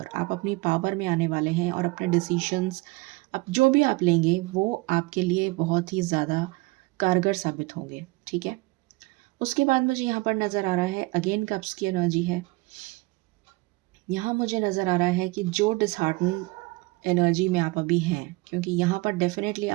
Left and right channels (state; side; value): quieter; left; 23.3 dB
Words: आप अपनी पावर में आने वाले हैं और अपने डिसीशंस अब जो भी आप लेंगे वो आपके लिए बहुत ही ज़्यादा कारगर साबित होंगे, ठीक है। उसके बाद मुझे यहाँ पर नज़र आ रहा है अगेन कप्स की एनर्जी है। यहाँ मुझे नज़र आ रहा है कि जो डिसहार्टन एनर्जी में आप अभी हैं, क्योंकि यहाँ पर डेफिनेटली